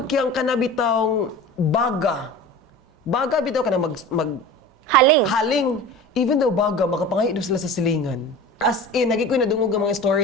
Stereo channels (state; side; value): normal; both; correlation 0.36